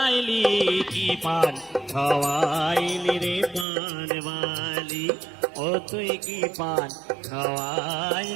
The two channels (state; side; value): drops out; left; at 3.7 s